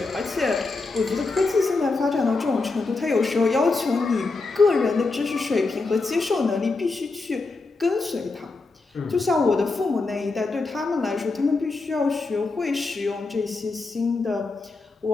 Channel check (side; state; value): right; quieter; 3.7 dB